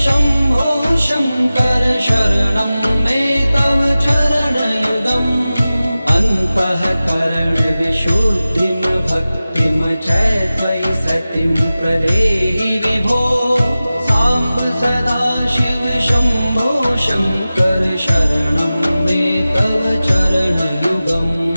शम्भो शङ्कर शरणं मे तव चरणयुगम् अन्तःकरण विशुद्धिं भक्तिं च त्वयि सतिं प्रदेहि विभो साम्ब सदा शिव शम्भो शङ्कर शरणं मे तव चरणयुगम्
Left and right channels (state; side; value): inverted; both; correlation -0.96